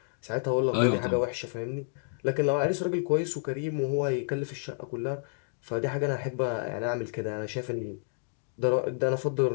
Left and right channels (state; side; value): silent; right; digital silence